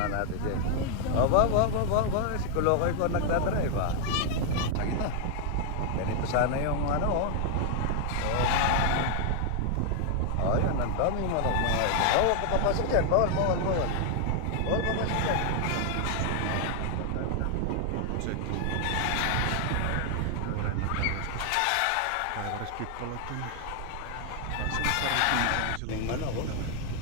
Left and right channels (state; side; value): different; both; correlation 0.00